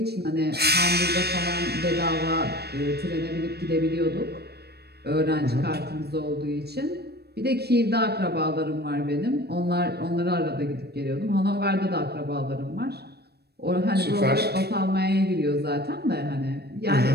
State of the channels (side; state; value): left; late; 0.47 ms